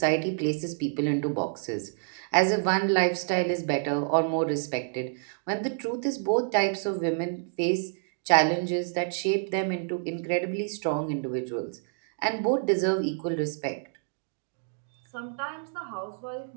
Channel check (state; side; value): silent; left; digital silence